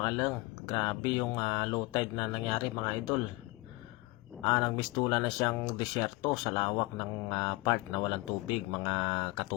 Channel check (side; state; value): right; quieter; 22.7 dB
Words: Grabe yung low tide na nangyari mga idol. Nagmistula na siyang disyerto sa lawak ng part na walang tubig mga